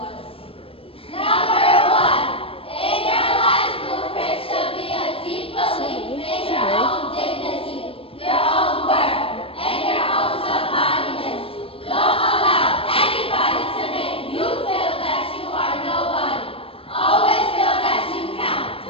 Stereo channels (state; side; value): late; right; 0.27 ms